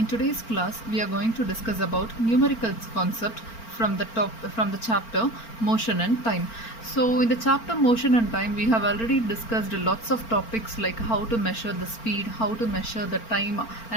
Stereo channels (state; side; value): late; right; 4.4 ms